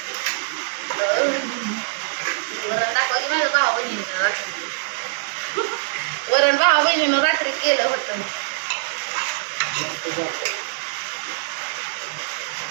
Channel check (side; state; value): left; silent; digital silence